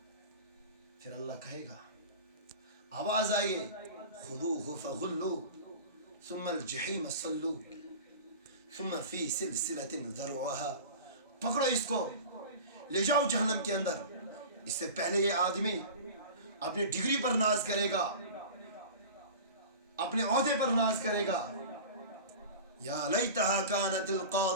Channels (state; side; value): inverted; both; correlation -0.35